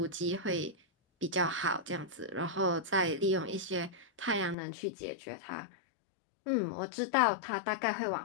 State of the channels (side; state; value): right; drops out; at 4.5 s